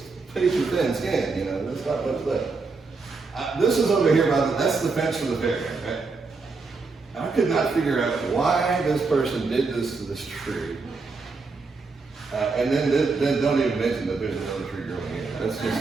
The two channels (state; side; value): quieter; left; 4.2 dB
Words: paper thin skin, you know, there's not much left. This is over here that's the fence for the fairground, right? I could not figure out why this person did this to this tree. And then don't even mention that there's another tree growing here. That's